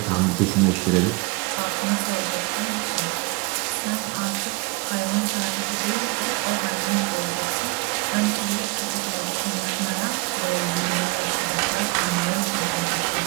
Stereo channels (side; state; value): left; quieter; 27.3 dB